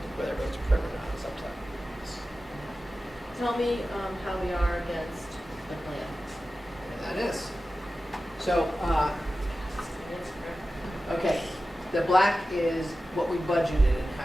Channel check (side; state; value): both; normal; correlation 0.94